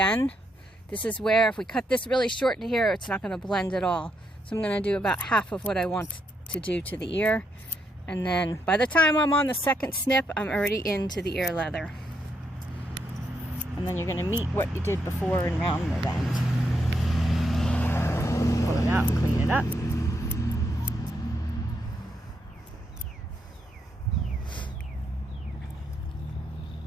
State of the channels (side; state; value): both; normal; correlation 0.78